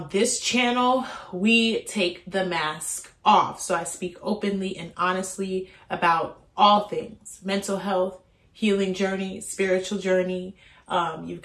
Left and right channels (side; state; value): both; identical; correlation 1.00